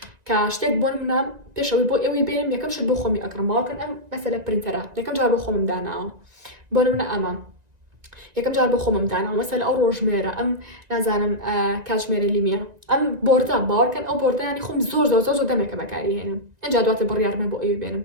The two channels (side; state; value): left; late; 1.9 ms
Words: کە شتێک بۆ منە پێشەوەی بۆ ئێوەی بێنم یەکەم شت بۆ خۆمی ئەکڕم باوەڕکەن ئەم مەسەلە پرینتەرە یەکەم جار بۆ خۆمم داناوە بۆ منە ئەمە یەکەم جار بۆ خۆمم داناوە مەسەلە ئەو ڕۆژمێرە ئەم نازانم کاتژمێرە لیمیە ئەم بۆردە باوەڕکەن ئەو بۆردە ینی خۆم زۆر دەمێکە بەکاری هێنم ئەجا دواتر بڕیارمە بۆ ئێوەی بێنم